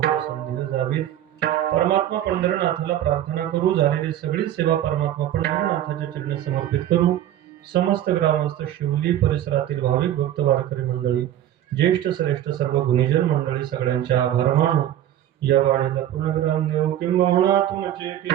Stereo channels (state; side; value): quieter; left; 11.9 dB